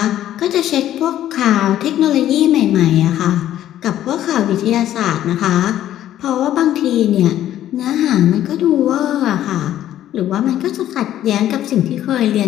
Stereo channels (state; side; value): quieter; right; 12.2 dB